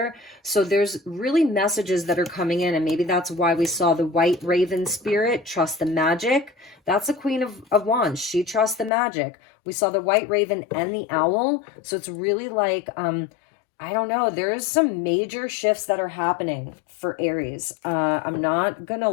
So there's really messages that are coming in, and maybe that's why we saw the white raven spirit, trust the magic. That's the Queen of Wands. She trusts the magic. We saw the white raven and the owl. So it's really like, I don't know, there's some major shifts that are happening for Aries. I'm not gonna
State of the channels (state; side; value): drops out; right; at 8.9 s